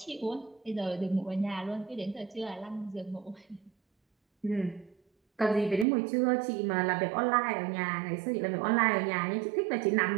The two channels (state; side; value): drops out; left; at 5.9 s